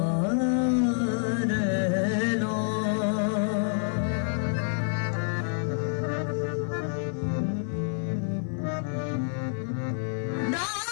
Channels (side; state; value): right; silent; 59 dB below the other